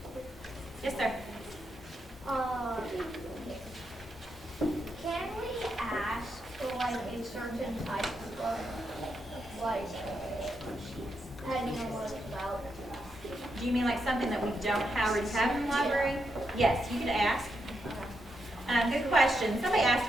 Yes, sir. Can we ask for like a certain type of book? Like, depending on what it's about. Do you mean like something that we don't already have in the library? Yes, you could ask. Good question. Somebody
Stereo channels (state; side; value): normal; both; correlation 0.83